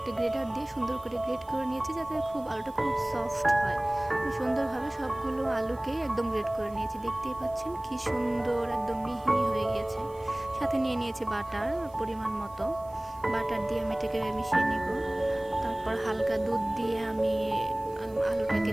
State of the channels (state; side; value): noise; right; hiss, 27 dB below the sound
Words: গ্রেটার দিয়ে সুন্দর করে গ্রেট করে নিয়েছি যাতে আলুটা খুব সফট হয়। সুন্দরভাবে সবগুলো আলুকেই একদম গ্রেট করে নিয়েছি। দেখতেই পাচ্ছেন কি সুন্দর একদম মিহি হয়ে গিয়েছে। সাথে নিয়ে নিয়েছি বাটার পরিমাণ মতো। বাটার দিয়ে আমি এটাকে মিশিয়ে নিব। তারপর হালকা দুধ দিয়ে আমি আলুটাকে